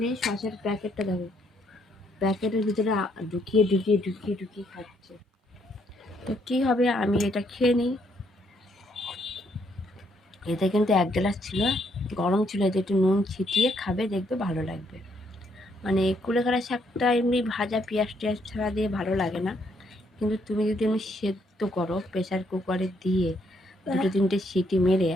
নেই, সসের প্যাকেটটা দেখো প্যাকেটের ভিতরে ঢুকিয়ে ঢুকিয়ে ঢুকিয়ে ঢুকিয়ে খাচ্ছে। তো কী হবে, আমি এটা খেয়ে নিই। এতে কিন্তু 1 গ্লাস ছিল, গরম ছিল, এতে একটু নুন ছিটিয়ে খাবে, দেখবে ভালো লাগবে। মানে কুলেখাড়া শাকটা এমনি ভাজা পেঁয়াজ টেয়াজ ছাড়া দিয়ে ভালো লাগে না, কিন্তু তুমি যদি এমনি সেদ্ধ করো প্রেসার কুকারে দিয়ে 2-3টে সিটি মেরে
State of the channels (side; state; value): both; normal; correlation 0.72